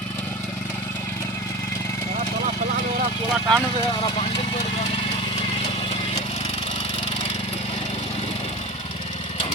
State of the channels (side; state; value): both; normal; correlation 0.31